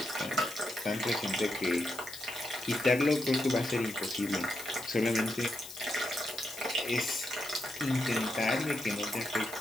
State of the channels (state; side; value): noise; left; hiss, 13 dB below the sound